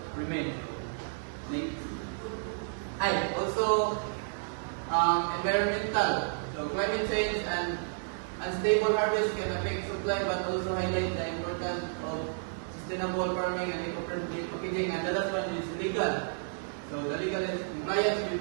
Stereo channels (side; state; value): left; silent; digital silence